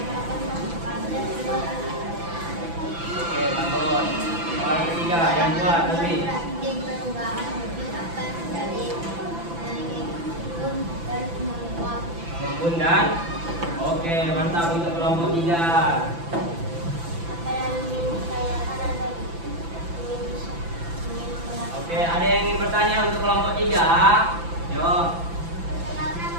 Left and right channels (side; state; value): left; late; 5.9 ms